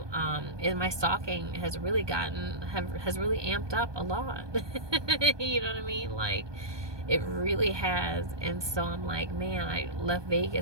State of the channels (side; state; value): left; late; 1.2 ms